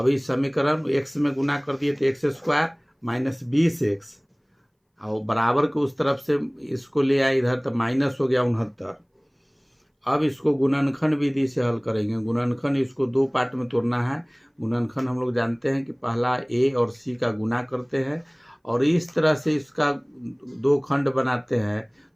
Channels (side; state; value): both; identical; correlation 1.00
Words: समीकरण x में गुना कर दिए तो x स्क्वायर -20x और बराबर के उस तरफ से इसको ले आए इधर तो माइनस हो गया 69। अब इसको गुणनखंड विधि से हल करेंगे। गुणनखंड इसको 2 पार्ट में तोड़ना है। गुणनखंड हम लोग जानते हैं कि पहला a और c का गुना करते हैं और इस तरह से इसका 2 खंड बनाते हैं,